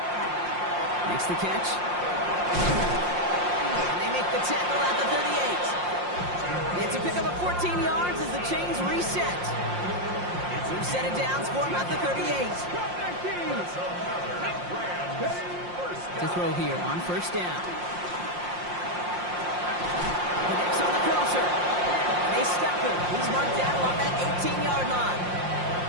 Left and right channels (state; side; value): late; left; 5.6 ms